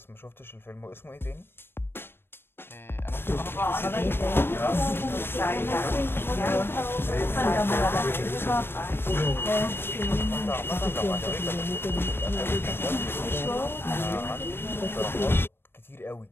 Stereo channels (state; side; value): late; right; 0.11 ms